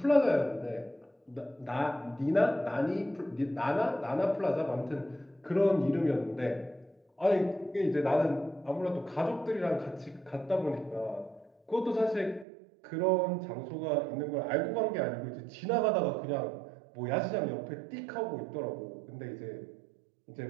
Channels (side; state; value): left; drops out; at 12.5 s